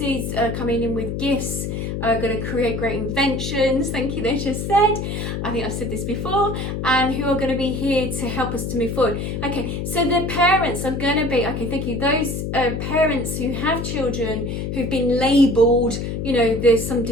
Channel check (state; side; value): noise; left; hum, 3 dB below the sound